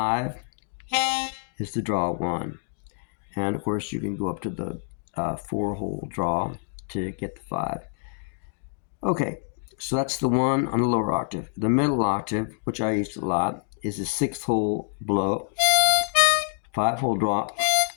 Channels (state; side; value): silent; right; 61 dB below the other